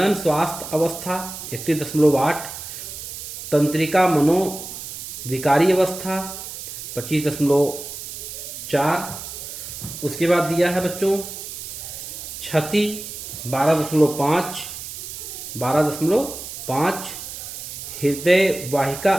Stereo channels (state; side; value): noise; right; hiss, 9 dB below the sound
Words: स्वास्थ्य अवस्था 31.8, तंत्रिका मनोविकारी अवस्था 25.4, उसके बाद दिया है बच्चों क्षति 12.5, हृदय वाहिका